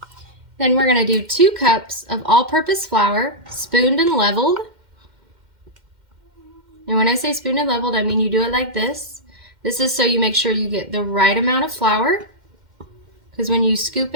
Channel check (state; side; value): late; left; 2.1 ms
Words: Then we're going to do 2 cups of all-purpose flour, spooned and leveled. And when I say spooned and leveled, I mean you do it like this. This is so you make sure you get the right amount of flour, because when you scoop